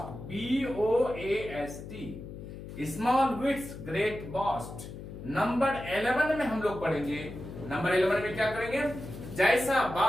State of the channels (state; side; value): noise; left; hum, 11 dB below the sound